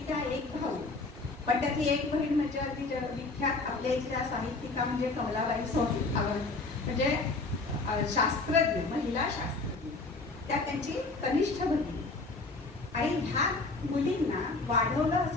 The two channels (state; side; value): quieter; right; 3.5 dB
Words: त्या 1 भाऊ, पण त्यातली एक बहीण म्हणजे अगदी विख्यात आपल्या इथल्या साहित्यिका म्हणजे कमलाबाई सोनी म्हणजे शास्त्रज्ञ, महिला शास्त्रज्ञ, त्या त्यांची कनिष्ठ बहीण. आणि ह्या मुलींना वाढवलं